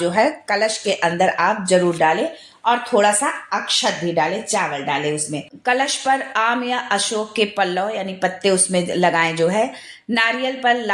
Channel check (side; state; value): both; identical; correlation 1.00